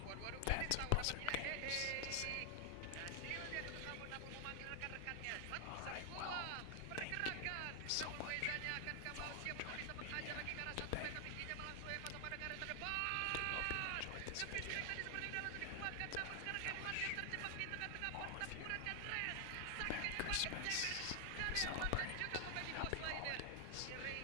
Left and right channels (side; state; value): both; different; correlation 0.00